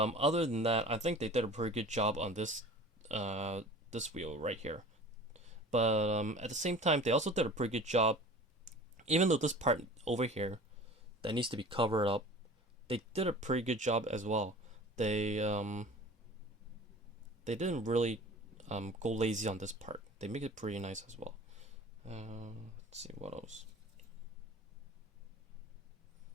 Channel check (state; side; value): normal; both; correlation 0.41